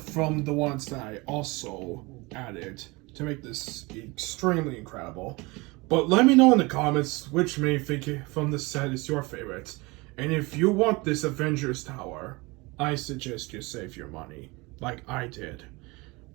the ones that I also added to make this extremely incredible. But let me know in the comments which minifigure from the set is your favorite. And if you want this Avengers Tower, I suggest you save your money, like I did.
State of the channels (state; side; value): quieter; left; 24.6 dB